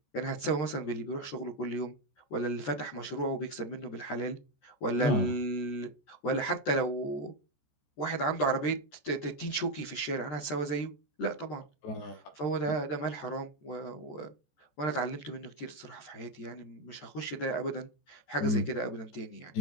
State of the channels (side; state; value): right; late; 14 ms